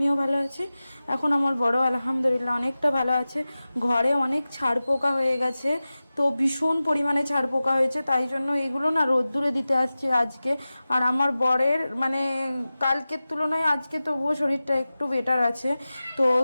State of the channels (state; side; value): inverted; both; correlation -0.96